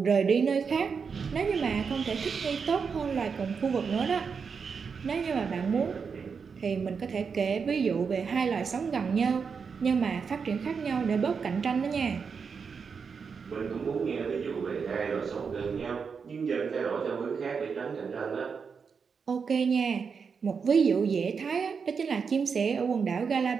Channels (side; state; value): left; quieter; 5.8 dB